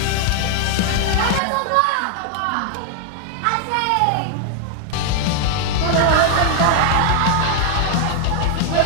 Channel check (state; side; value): different; both; correlation 0.00